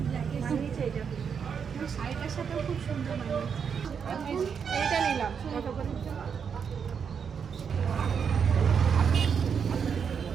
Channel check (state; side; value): quieter; left; 6.8 dB